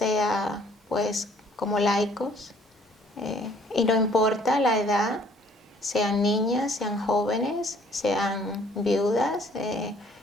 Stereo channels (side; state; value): both; normal; correlation 0.59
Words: pues como laicos, y no importa la edad, sean niñas, sean jóvenes, sean viudas,